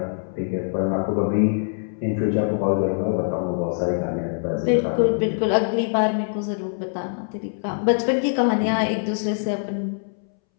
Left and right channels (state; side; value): silent; right; 63 dB below the other